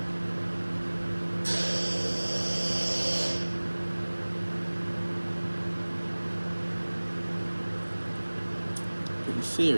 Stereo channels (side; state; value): both; inverted; correlation -1.00